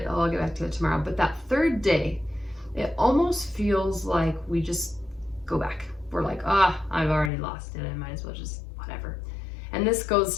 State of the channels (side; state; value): right; drops out; at 7.3 s